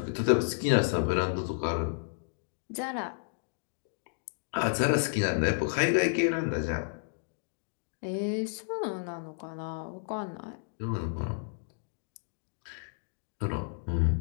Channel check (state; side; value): silent; right; digital silence